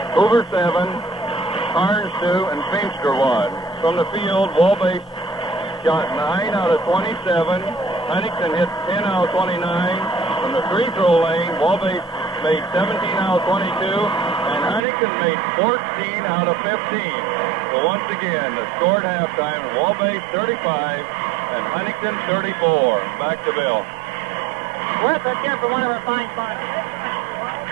Hoover 7, Carnes 2, and Feimster 1. From the field, Wabash shot 9 out of 27. Huntington hit 10 out of 29. From the free throw lane, Wabash made 17 out of 22, and Huntington made 14 out of 15. So once again, the score at halftime, Wabash 35 and Huntington 34. Back to Bill. Worth it here for one of our fine sponsors.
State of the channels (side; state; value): left; drops out; at 14.8 s